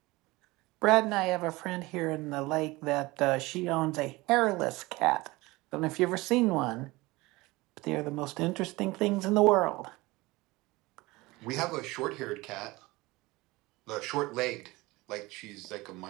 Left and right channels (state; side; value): quieter; left; 21.6 dB